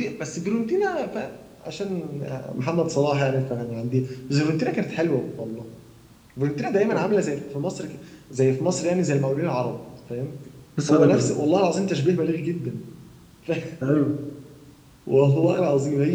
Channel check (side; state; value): both; identical; correlation 1.00